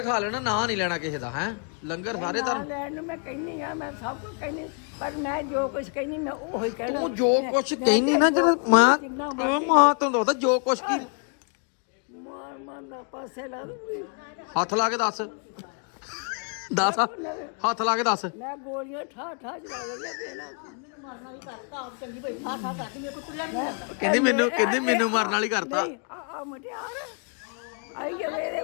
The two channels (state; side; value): quieter; right; 39.3 dB